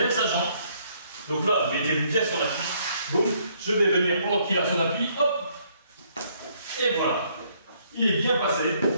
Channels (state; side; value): inverted; both; correlation -0.67